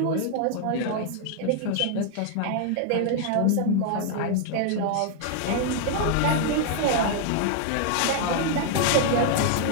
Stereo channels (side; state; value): both; different; correlation 0.00